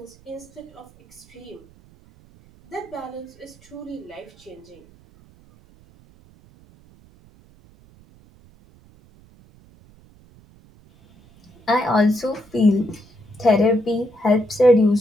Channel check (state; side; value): noise; right; rumble, 27 dB below the sound